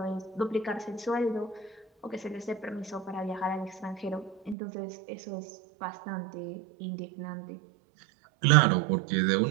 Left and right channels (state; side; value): drops out; left; at 4.5 s